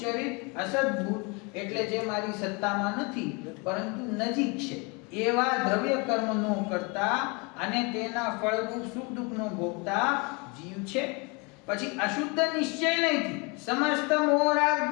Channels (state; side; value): quieter; right; 30.1 dB